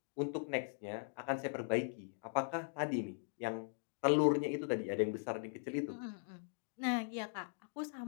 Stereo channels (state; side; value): silent; right; digital silence